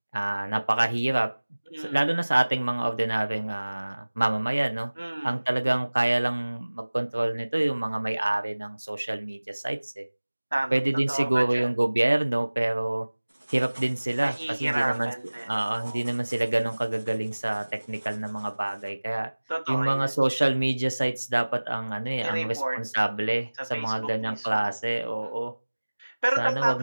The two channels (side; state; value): both; inverted; correlation -1.00